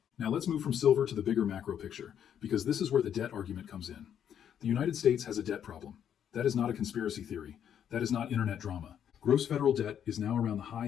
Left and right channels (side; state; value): right; quieter; 9.1 dB